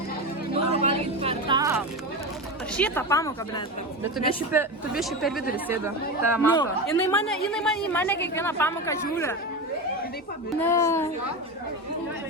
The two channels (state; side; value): normal; both; correlation 0.21